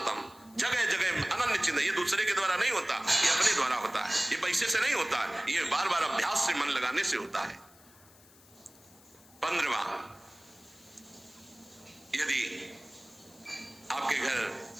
जगह जगह अनन्य चिंतन। ये दूसरे के द्वारा नहीं होता, ये अपने द्वारा होता है, ये पैसे से नहीं होता है, ये बार बार अभ्यास से, मन लगाने से होता है। 15वां, यदि आपके घर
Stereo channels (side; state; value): left; noise; hiss, 25 dB below the sound